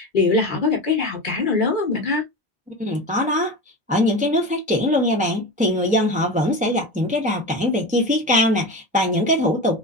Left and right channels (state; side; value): normal; both; correlation 0.26